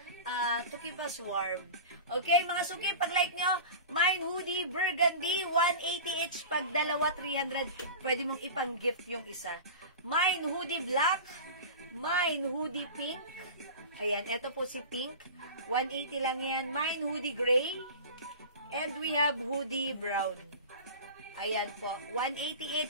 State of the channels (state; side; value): inverted; both; correlation -0.33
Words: to keep us warm. Okay, mga suki, pag like nyo, mine hoodie burgundy, 180 each. Pag dalawa, 300. Pwede mong ipang-gift yung isa. Mine hoodie black, mine hoodie pink. Ayan, eto po si pink. 180 lang yan. Mine hoodie gray. And we have hoodie brown. Ayan po, 180